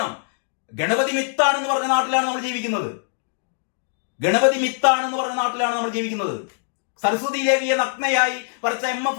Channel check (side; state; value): right; silent; digital silence